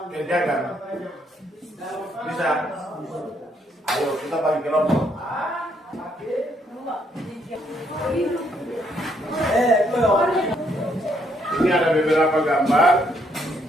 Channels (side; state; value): both; normal; correlation 0.72